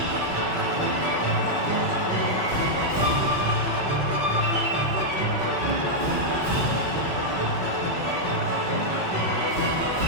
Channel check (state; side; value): late; left; 5.3 ms